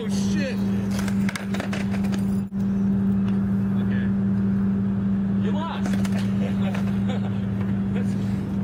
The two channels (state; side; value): identical; both; correlation 1.00